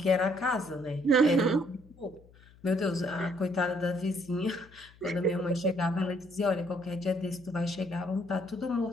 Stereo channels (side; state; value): left; noise; hum, 25 dB below the sound